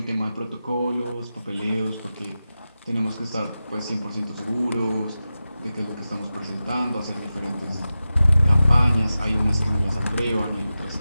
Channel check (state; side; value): inverted; both; correlation -0.93